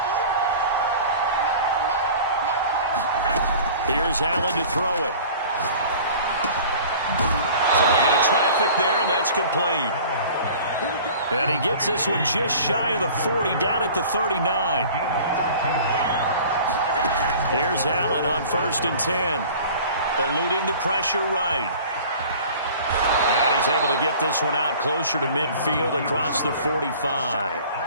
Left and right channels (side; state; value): both; inverted; correlation -0.44